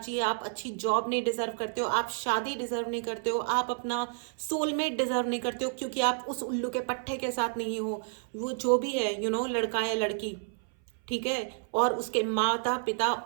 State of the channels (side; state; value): left; silent; 58 dB below the other